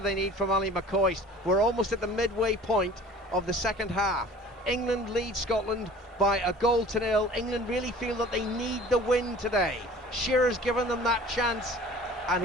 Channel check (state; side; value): normal; both; correlation 0.46